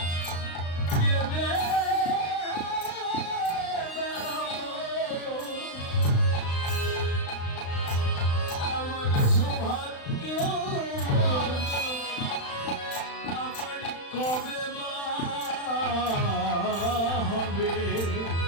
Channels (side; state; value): right; late; 35 ms